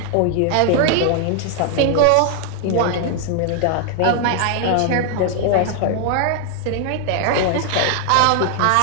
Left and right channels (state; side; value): different; both; correlation 0.00